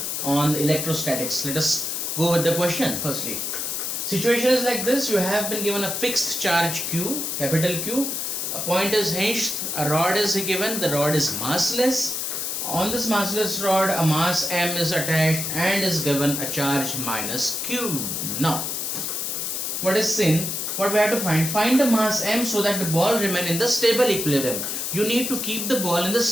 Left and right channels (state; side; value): noise; left; hiss, 2 dB below the sound